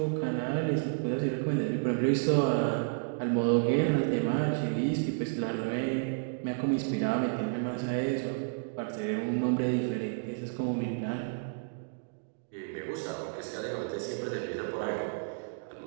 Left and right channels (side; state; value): left; silent; digital silence